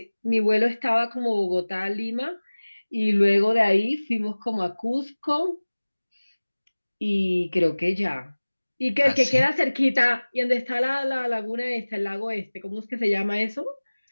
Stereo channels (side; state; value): both; inverted; correlation -1.00